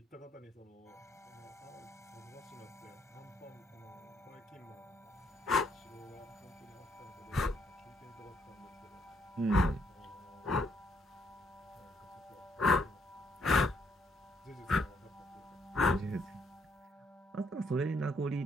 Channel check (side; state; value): both; normal; correlation 0.72